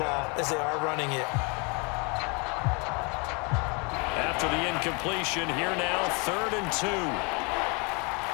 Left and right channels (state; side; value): quieter; right; 31.8 dB